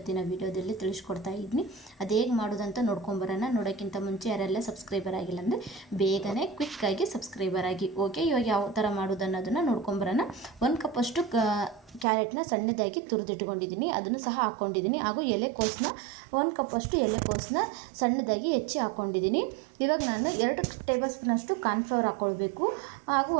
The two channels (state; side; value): drops out; left; at 12.1 s